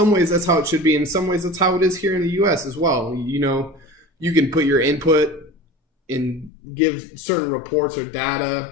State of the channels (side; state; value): right; drops out; at 6.5 s